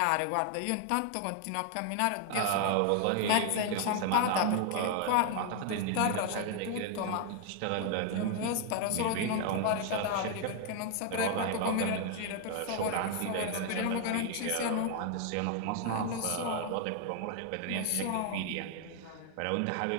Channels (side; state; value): both; different; correlation 0.00